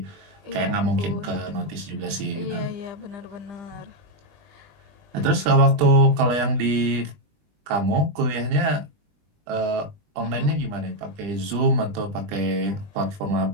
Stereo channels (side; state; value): left; late; 20 ms